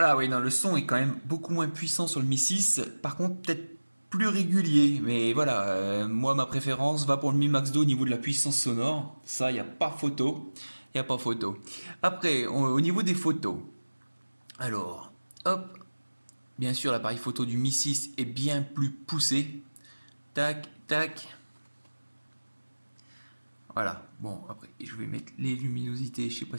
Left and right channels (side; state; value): both; inverted; correlation -1.00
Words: oui, non, le son est quand même beaucoup moins puissant sur le Mi 6. Par contre, peut-être plus régulier. Mais voilà, moi, ma préférence va pour le Mi Max 2 au niveau de la puissance sonore. Ça, il n'y a pas photo. Il n'y a pas photo. Après, au niveau des photos. Alors, hop. Bien sûr, l'appareil photo du Mi 6 est bien plus poussé. Tac, tac. Voilà. Bon, après, je vais mettre les luminosités. Je ne sais